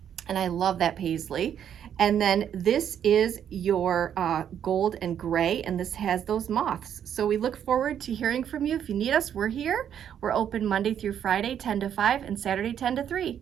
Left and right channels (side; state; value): left; quieter; 9.2 dB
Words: And I love that paisley. And then this is your gold and gray, and this has those moths. So we look forward to hearing from you. If you need us, we're here. We're open Monday through Friday, 10 to 5, and Saturday, 10 to 3.